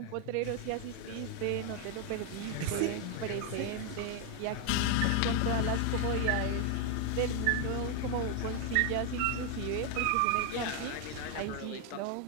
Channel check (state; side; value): different; both; correlation 0.01